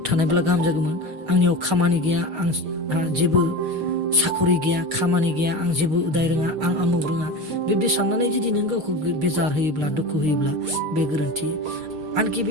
थानायब्ला गाहाम जागौमोन, आंनियाव खामानि गैया, आंहा जेबो साखरि गैया, खामानि गैया, आं जेबो उदाय रोङा, आं आमुक रोङा, बेबायदि साननानै जुदि नों गावखौ बेजार होयोब्ला दुखु होयोब्ला बे गोरोन्थि। आनखि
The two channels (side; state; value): left; late; 6.5 ms